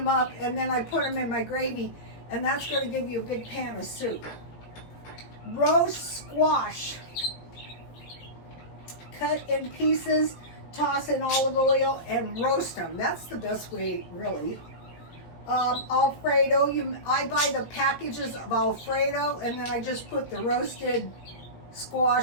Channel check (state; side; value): late; right; 17 ms